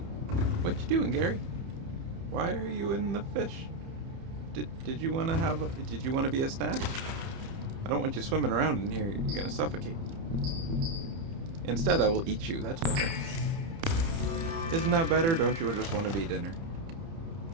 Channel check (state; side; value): late; left; 30 ms